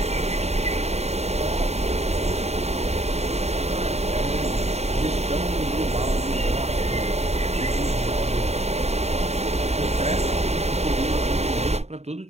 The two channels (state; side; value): late; left; 0.31 ms